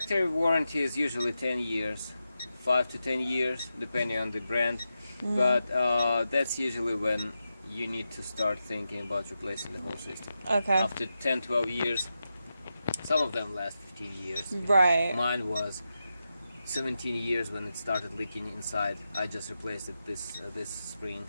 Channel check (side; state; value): both; inverted; correlation -0.89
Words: warranty is usually 10 years, 5 to 10 years, depending on the brand. But that's usually when you need to start thinking about replacing the whole system. Okay. After 10, 12 years, some of them last 15 years. Right. Mine was 17 years when it started leaking inside. I just replaced it this spring.